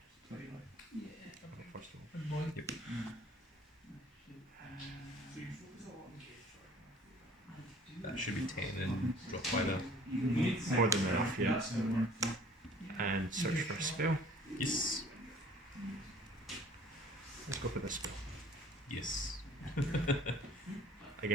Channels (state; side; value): normal; both; correlation 0.52